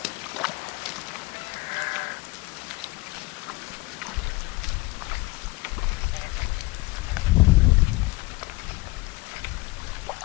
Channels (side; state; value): right; quieter; 22.7 dB